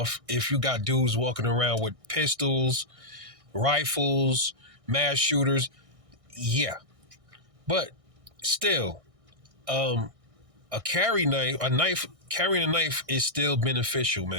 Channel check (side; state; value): left; late; 1.6 ms